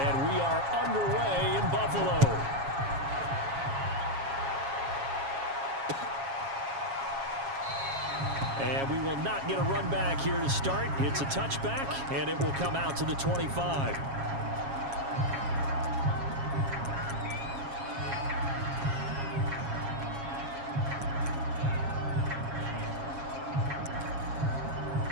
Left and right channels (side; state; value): left; late; 7.3 ms